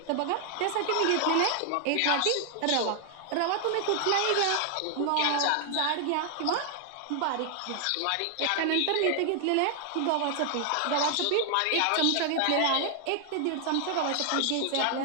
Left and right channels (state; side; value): different; both; correlation 0.00